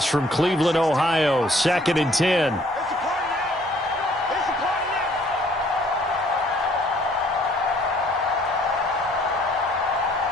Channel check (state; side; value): normal; both; correlation 0.60